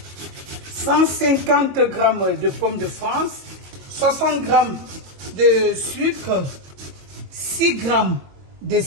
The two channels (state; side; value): late; left; 22 ms